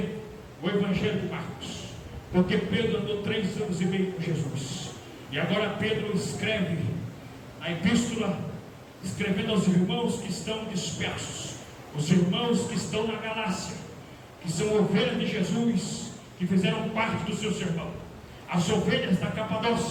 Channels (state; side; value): identical; both; correlation 1.00